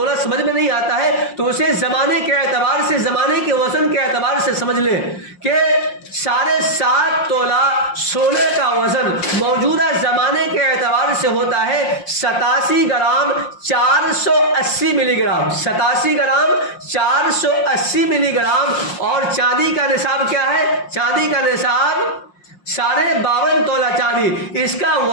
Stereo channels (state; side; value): late; right; 5.6 ms